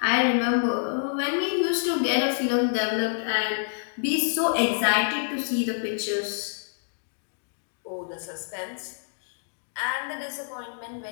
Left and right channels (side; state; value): right; silent; digital silence